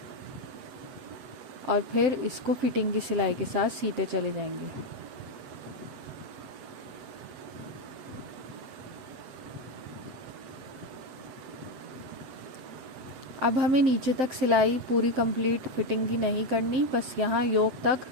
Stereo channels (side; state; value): left; late; 7.8 ms